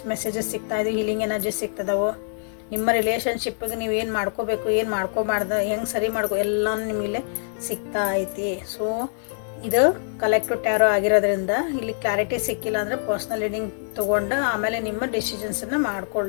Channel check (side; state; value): right; silent; digital silence